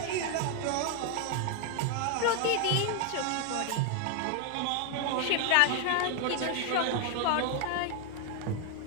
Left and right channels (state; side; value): different; both; correlation 0.00